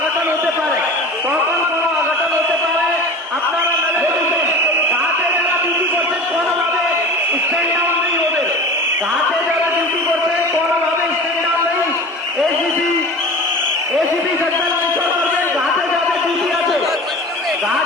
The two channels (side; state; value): both; normal; correlation 0.36